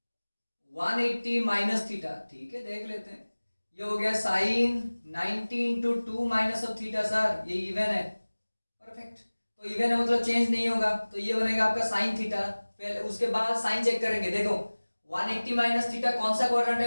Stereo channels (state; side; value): inverted; both; correlation -1.00